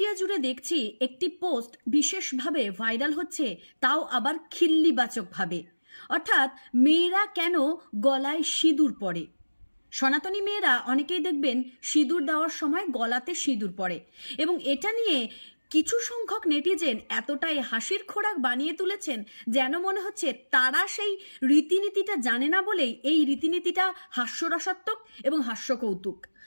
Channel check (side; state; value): both; inverted; correlation -1.00